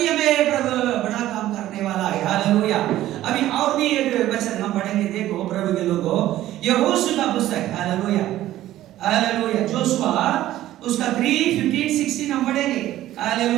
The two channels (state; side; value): quieter; left; 14.1 dB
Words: हालेलुया। अभी और भी एक वचन हम पढ़ेंगे, देखो प्रभु के लोगों, यहोशू का पुस्तक, हालेलुया हालेलुया, जोशुआ उसका 3:15-16 हम पढ़ेंगे,